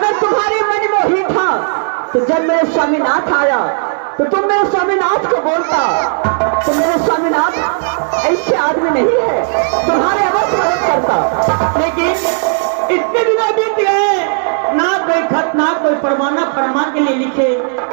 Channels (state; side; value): silent; left; digital silence